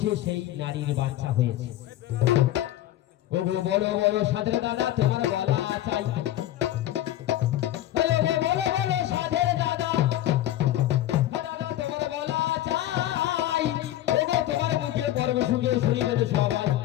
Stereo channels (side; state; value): right; quieter; 13.7 dB